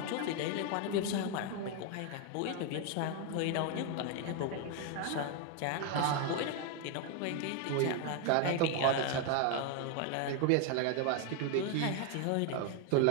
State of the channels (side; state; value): both; different; correlation 0.01